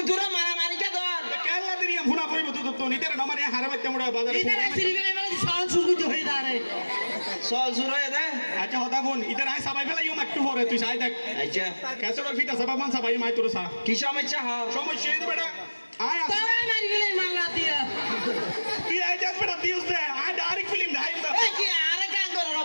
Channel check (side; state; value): both; inverted; correlation -1.00